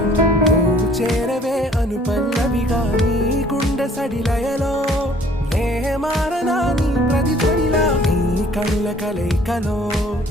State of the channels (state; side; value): normal; both; correlation 0.57